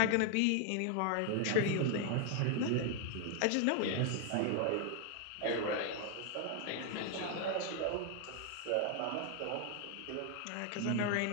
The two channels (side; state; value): both; different; correlation 0.01